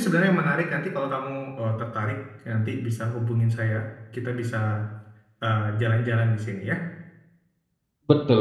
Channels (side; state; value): both; identical; correlation 1.00